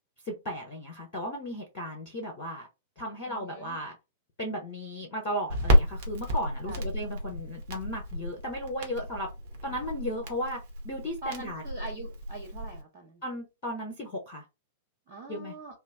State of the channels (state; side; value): inverted; both; correlation -0.50